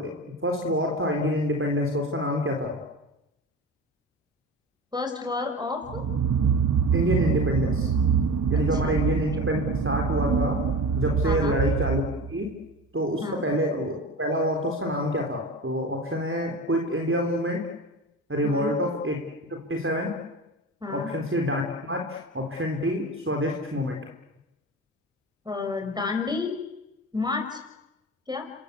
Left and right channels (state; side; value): normal; both; correlation 0.31